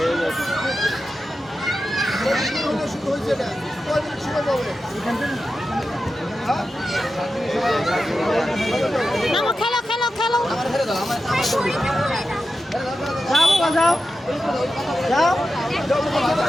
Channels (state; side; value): normal; both; correlation 0.91